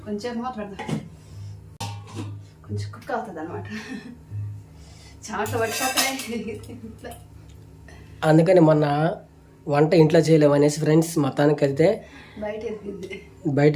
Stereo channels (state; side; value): identical; both; correlation 1.00